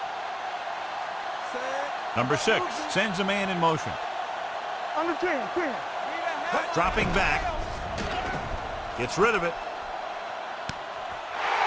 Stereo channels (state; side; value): identical; both; correlation 1.00